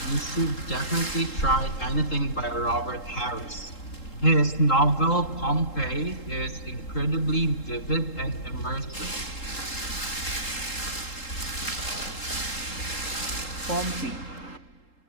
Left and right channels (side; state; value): right; late; 3.8 ms